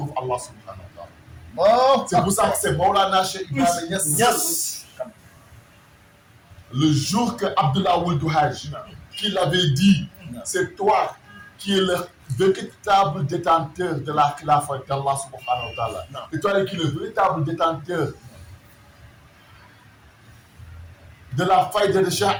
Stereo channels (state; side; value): identical; both; correlation 1.00